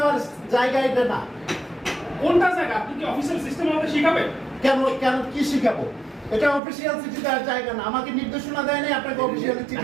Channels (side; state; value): left; drops out; at 6.6 s